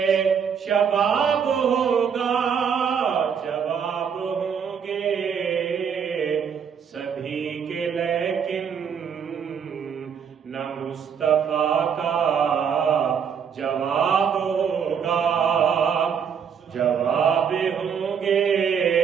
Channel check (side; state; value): left; quieter; 7.2 dB